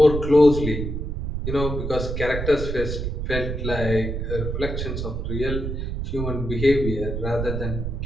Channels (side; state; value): right; noise; rumble, 3 dB below the sound